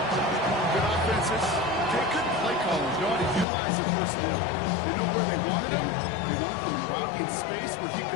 Good offenses. They couldn't play calling. You ought to utilize their personnel. They know where they wanted him. They wanted him right in space where he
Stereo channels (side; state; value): right; drops out; at 3.5 s